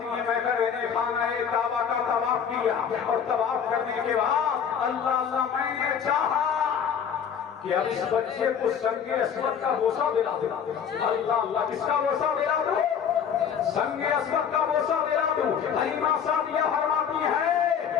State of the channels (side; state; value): right; quieter; 7.6 dB